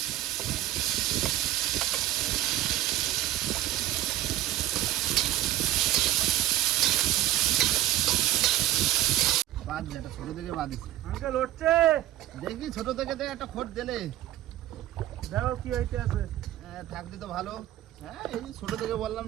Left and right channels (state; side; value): quieter; left; 14.0 dB